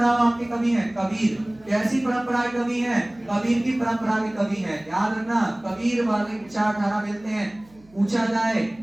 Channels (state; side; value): noise; right; hum, 28 dB below the sound